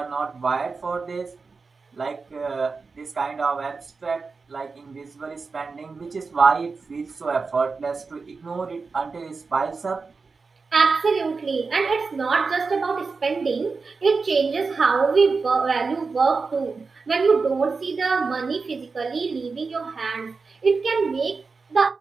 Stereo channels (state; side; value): quieter; left; 4.5 dB